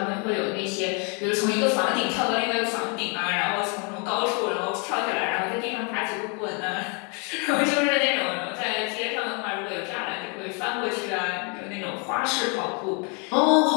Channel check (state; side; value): quieter; right; 34.8 dB